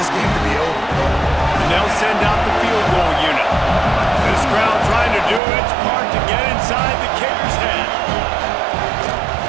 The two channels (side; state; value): left; drops out; at 5.4 s